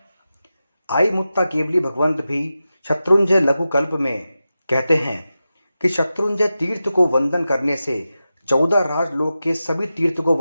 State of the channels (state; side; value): inverted; both; correlation -0.92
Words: आई मुत्ता केवली भगवंत भी शत्रुंजय लघु कल्प में कहते हैं कि शत्रुंजय तीर्थ को वंदन करने से 14 राजलोक के सभी तीर्थ को